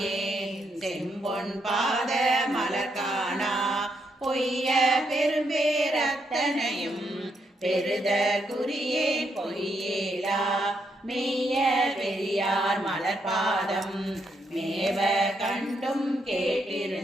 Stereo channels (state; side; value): normal; both; correlation 0.78